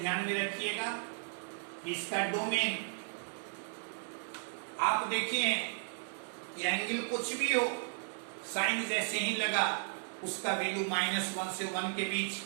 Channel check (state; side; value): silent; left; digital silence